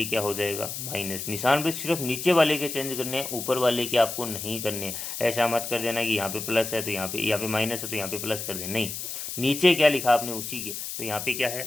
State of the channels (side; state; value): left; noise; hiss, 6 dB below the sound